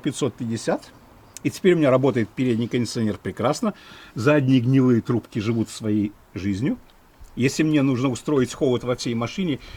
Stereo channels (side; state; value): both; identical; correlation 1.00